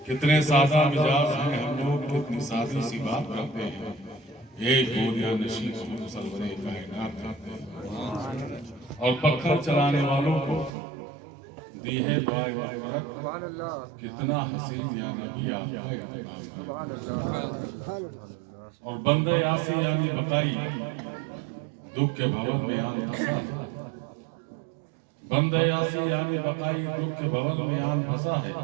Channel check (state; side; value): drops out; left; at 10.8 s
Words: کتنے سادہ مزاج ہیں ہم لوگ، کتنی سادی سی بات کرتے ہیں، ایک گودیا نشین کو سرور کائنات کرتے ہیں، اور پتھر چلانے والوں کو دی ہے دعائے مغفرت، کتنا حسین یا نبی آپ کا، اور بندہ یاسی یعنی بقائی دکھ کے بھون میں آن پھنسا ہے، بندہ یاسی یعنی بقائی دکھ کے بھون میں آن پھنسا ہے،